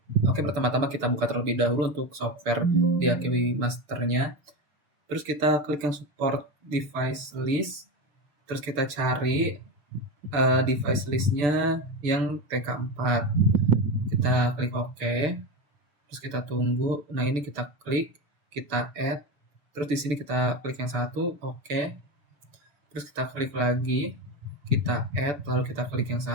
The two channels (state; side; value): late; left; 6.8 ms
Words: Oke, pertama-tama kita buka terlebih dahulu untuk software di AKW Masternya. Terus kita klik yang support device list. Terus kita cari device listnya yang TK4. Kita klik OK. Terus kita tunggu. Nah, ini kita klik, kita add. Terus di sini kita klik yang satu, OK. Terus kita klik lagi, kita add, lalu kita klik yang